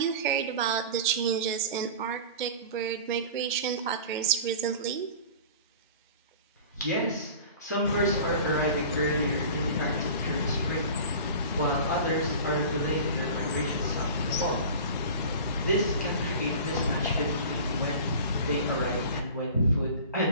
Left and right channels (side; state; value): both; inverted; correlation -0.38